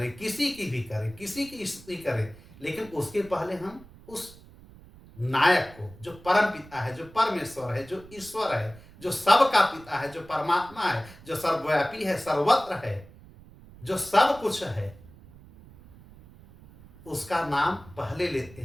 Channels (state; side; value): noise; right; rumble, 21 dB below the sound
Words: किसी की भी करें, किसी की स्तुति करें, लेकिन उसके पहले हम उस नायक को, जो परम पिता है, जो परमेश्वर है, जो ईश्वर है, जो सबका पिता है, जो परमात्मा है, जो सर्वव्यापी है, सर्वत्र है, जो सब कुछ है, उसका नाम पहले लेते